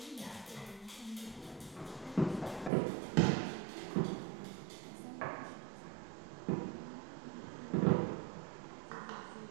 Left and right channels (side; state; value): left; drops out; at 2.7 s